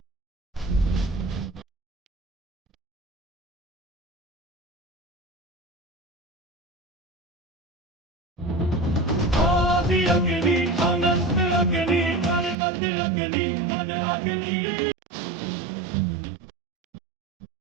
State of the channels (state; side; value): drops out; left; at 12.6 s